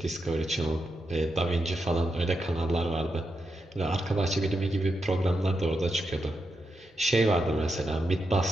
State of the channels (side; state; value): both; normal; correlation 0.85